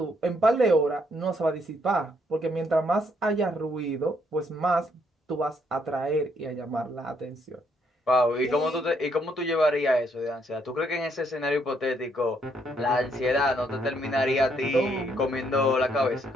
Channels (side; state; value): both; normal; correlation 0.71